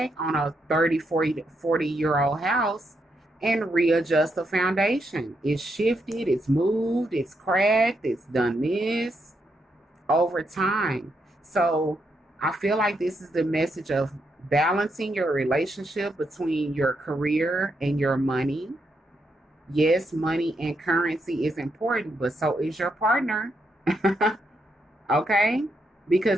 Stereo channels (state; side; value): normal; both; correlation 0.80